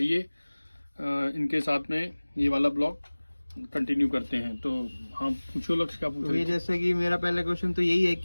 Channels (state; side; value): inverted; both; correlation -1.00